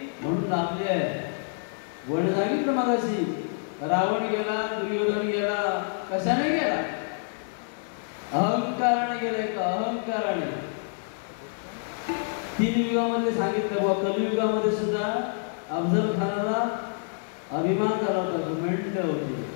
म्हणून लाभली आहे. वण सांगितलं मगाशी, रावण गेला, दुर्योधन गेला, कशाने गेला? अहंकाराने गेलाय का? अहंकाराने. 3 युगामध्ये सांगितलं बा, कलियुगामध्ये सुद्धा अफजल खानाला अभिमान झाला होता, घुमेंट होती.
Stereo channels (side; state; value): right; silent; digital silence